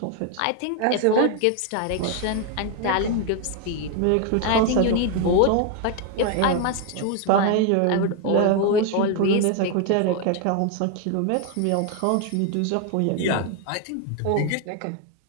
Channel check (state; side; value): different; both; correlation 0.01